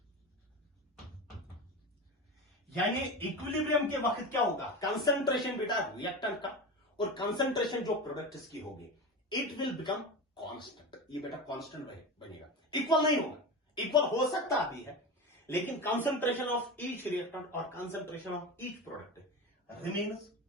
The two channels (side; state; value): both; normal; correlation 0.25